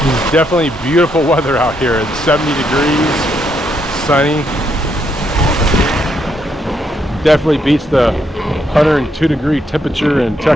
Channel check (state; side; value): normal; both; correlation 0.76